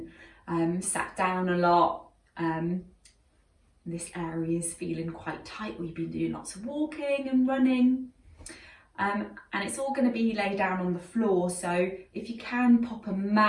sat down a lot, this area is feeling quite tight, or you've been doing lots of walking and running. And it's all going to be laid down on the floor, so if you can pop a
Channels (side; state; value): both; identical; correlation 1.00